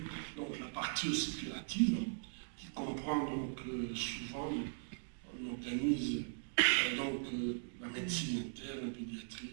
donc la partie hospitalative qui comprend donc souvent, on organise donc la médecine interne, la pédiatrie,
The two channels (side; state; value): left; silent; digital silence